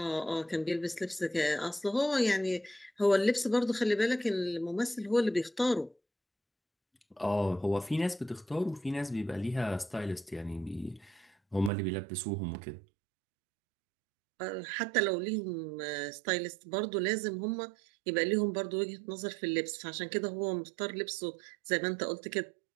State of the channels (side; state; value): left; drops out; at 11.7 s